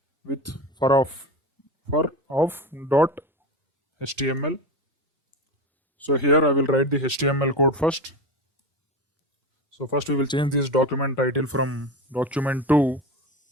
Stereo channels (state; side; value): normal; both; correlation 0.24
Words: with for of dot HTML. So here I will write the HTML code first. So first we will change this document title from document to